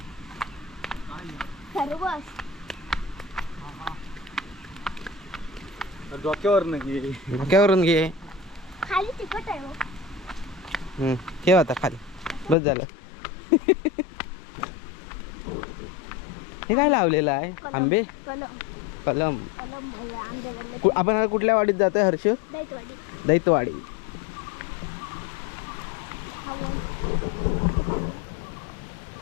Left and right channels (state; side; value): drops out; right; at 12.6 s